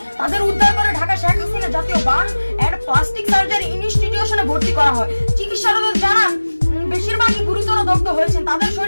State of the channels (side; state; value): both; inverted; correlation -1.00